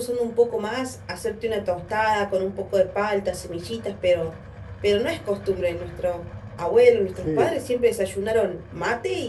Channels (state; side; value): identical; both; correlation 1.00